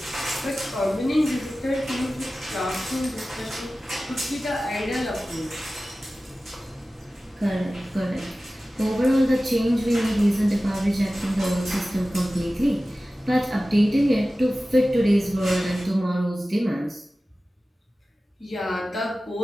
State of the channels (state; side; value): normal; both; correlation 0.96